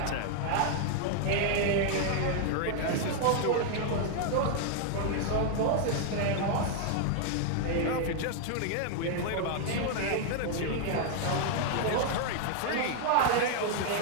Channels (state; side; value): different; both; correlation 0.00